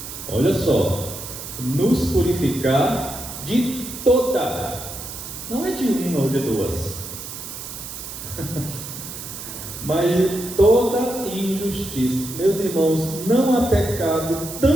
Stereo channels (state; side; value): noise; right; hiss, 10 dB below the sound